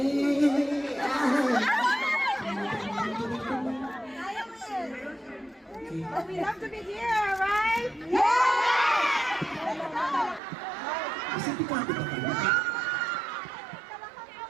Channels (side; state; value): left; drops out; at 10.4 s